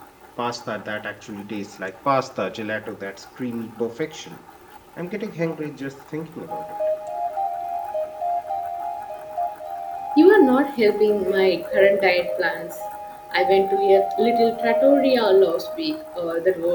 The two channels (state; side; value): identical; both; correlation 1.00